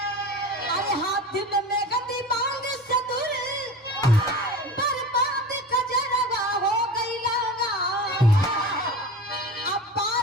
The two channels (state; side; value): normal; both; correlation 0.32